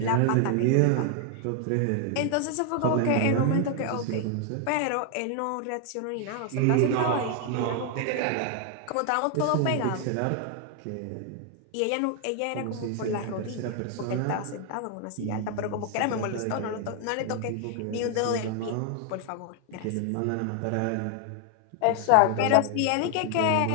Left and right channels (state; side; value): different; both; correlation 0.00